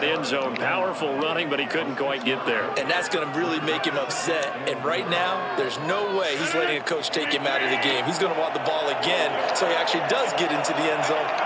end zone. Powerful running, but he couldn't quite get there. And that's going to really make him upset. And right now, there's no way he's letting a coach take him out of the game. He's going to want the ball again, so he actually does get into the end zone,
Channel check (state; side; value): identical; both; correlation 1.00